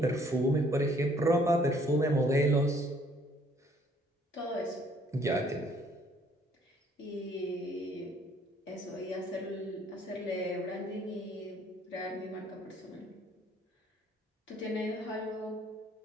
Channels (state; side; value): normal; both; correlation 0.62